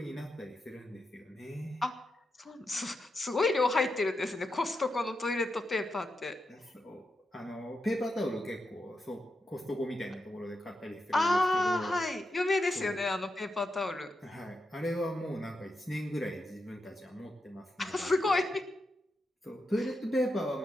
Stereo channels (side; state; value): both; normal; correlation 0.86